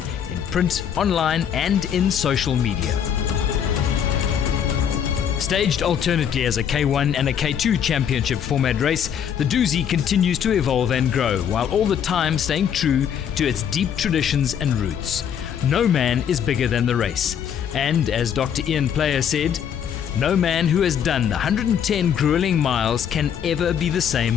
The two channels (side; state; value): right; quieter; 8.5 dB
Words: in print, online, and in social media. Staged alternately as a K1 and a K2 championship format race, the Dusi continues to evolve and grow, while all the time staying true to its deep traditions and roots. No man is bigger than the race. And as Dr. Ian Player said, no man who has done the 110 grueling miles can ever be the same